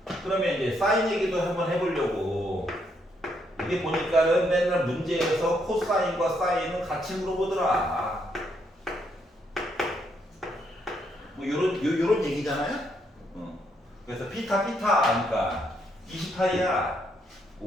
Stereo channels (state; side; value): normal; both; correlation 0.75